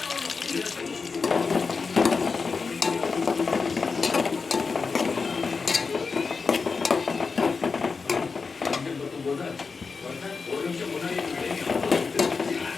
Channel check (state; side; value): quieter; right; 4.8 dB